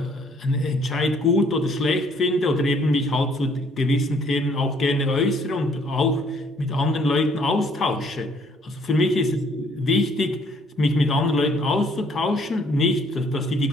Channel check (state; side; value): normal; both; correlation 0.63